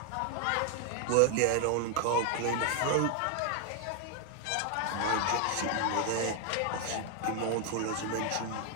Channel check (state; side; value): different; both; correlation 0.01